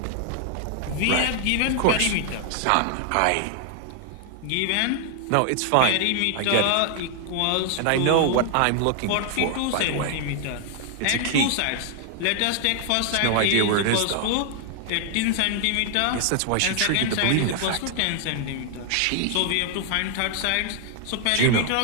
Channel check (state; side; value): different; both; correlation 0.00